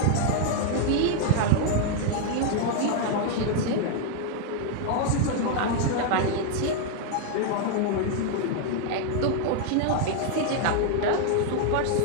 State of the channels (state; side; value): different; both; correlation 0.00